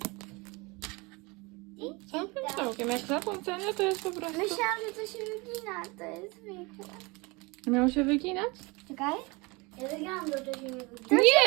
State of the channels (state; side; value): quieter; left; 26.3 dB